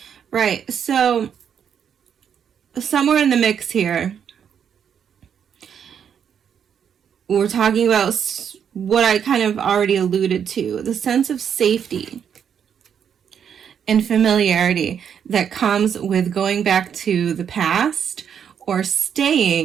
Right, so somewhere in the mix here, we're talking about what I kind of already alluded to, the sense of safety and familiarity that comes with going back to the past or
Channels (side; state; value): left; quieter; 8.0 dB